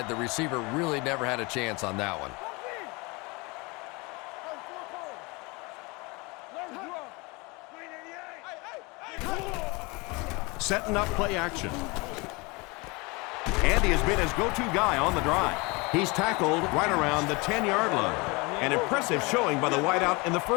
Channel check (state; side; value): quieter; right; 26.7 dB